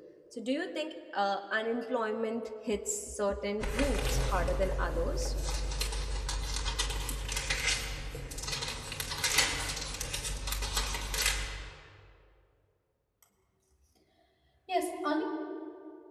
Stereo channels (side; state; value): both; identical; correlation 1.00